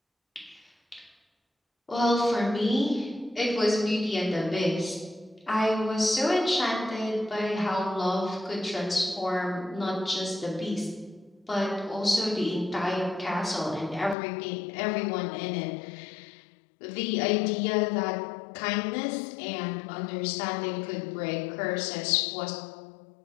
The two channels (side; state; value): right; drops out; at 14.2 s